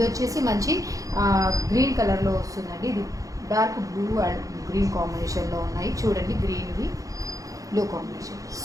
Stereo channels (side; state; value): left; late; 0.16 ms